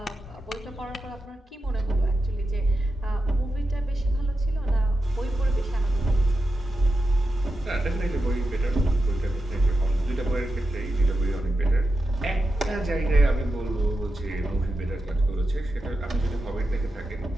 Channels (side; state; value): both; normal; correlation 0.89